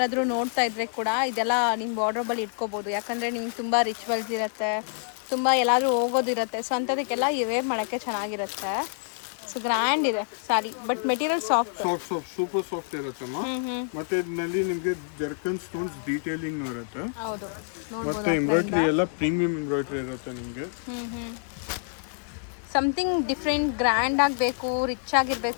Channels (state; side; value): silent; right; digital silence